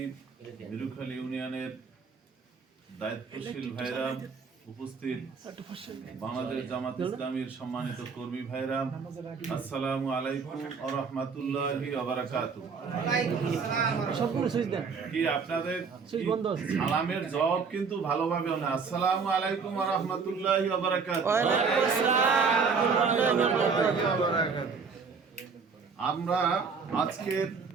মিরুখালী ইউনিয়নের দায়িত্বশীল ভাইরা, উপস্থিত বাংলাদেশ জামাত ইসলামীর সম্মানিত কর্মী ভাইরা, আসসালামু আলাইকুম ওয়া রাহমাতুল্লাহি ওয়া বারাকাতুহু। কি আপনাদের সালামের জবাব কিন্তু ভালোভাবে না। আসসালামু আলাইকুম ওয়া রাহমাতুল্লাহি ওয়া বারাকাতুহু। আমরা আজকে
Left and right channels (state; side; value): quieter; left; 5.3 dB